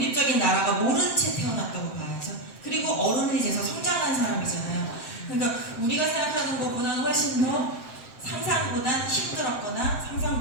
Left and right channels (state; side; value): late; right; 7.7 ms